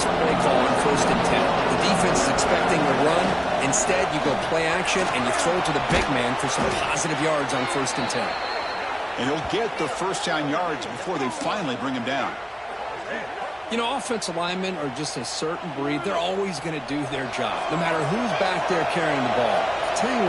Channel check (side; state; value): both; identical; correlation 1.00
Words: play call on 1st and 10. The defense is expecting a run. Instead, you go play action, and you throw it to the big man for some positive yards on 1st and 10. And he'll get the first down yards before they finally bring him down. You know, offensive linemen are just a certain breed. They're always going to do their job, no matter who's back there carrying the ball. I'll tell you